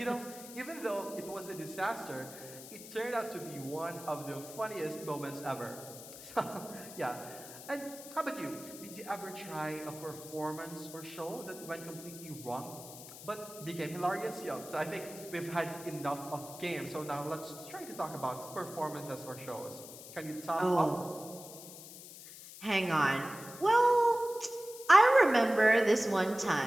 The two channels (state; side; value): noise; left; hiss, 14 dB below the sound